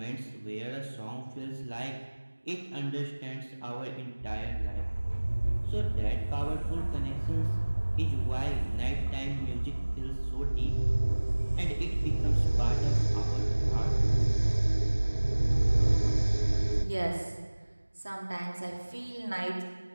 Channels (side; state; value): both; inverted; correlation -1.00